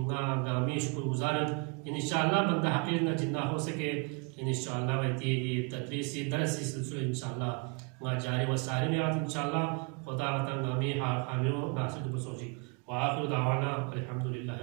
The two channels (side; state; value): left; quieter; 31.6 dB